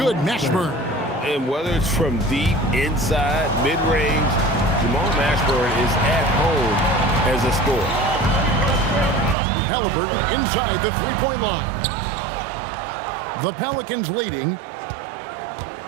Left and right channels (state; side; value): drops out; left; at 9.3 s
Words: Mashburn. And whether it's from deep, inside, mid-range, Jamal Mashburn is at home as a scorer. Halliburton inside the 3-point line. The Pelicans leading.